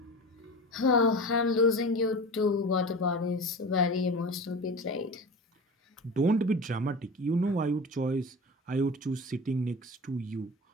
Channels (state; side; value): normal; both; correlation 0.32